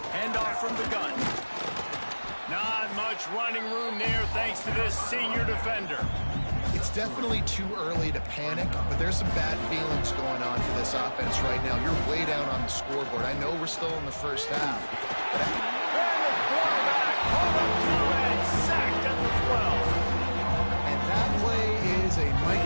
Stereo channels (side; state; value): both; inverted; correlation -1.00